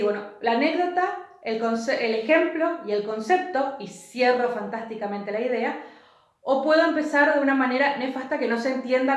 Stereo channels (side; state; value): both; identical; correlation 1.00